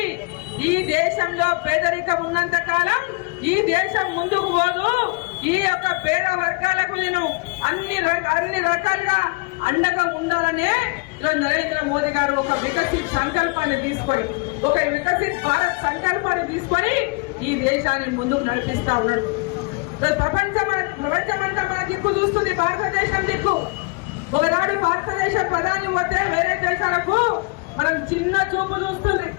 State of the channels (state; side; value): quieter; right; 28.5 dB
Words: ఈ దేశంలో పేదరికం ఉన్నంత కాలం ఈ దేశం ముందుకు పోదు. ఈ యొక్క పేద వర్గాలకు నేను అన్ని రకాలుగా అండగా ఉండాలనే నరేంద్ర మోదీ గారు ఒక వికసిత్ సంకల్పాన్ని తీసుకొని, ఒక వికసిత్ భారత్ సంకల్పాన్ని తీసుకొని ఈ దేశాన్ని ముందుకు నడిపిస్తా ఉన్నాడు. ప్రపంచమంతా మన దిక్కు చూస్తుంది, భారతదేశం దిక్కు. ఒకనాడు భారతదేశ ప్రధాని పోతే వేరే దేశాలకు మనం చిన్న చూపు చూస్తుంది.